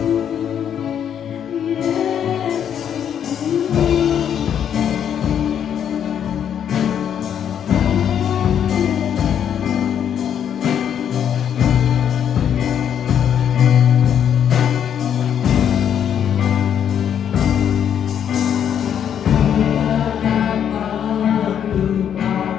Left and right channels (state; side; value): quieter; right; 8.9 dB